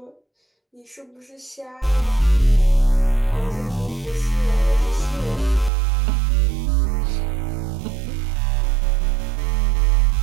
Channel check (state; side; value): drops out; left; at 5.7 s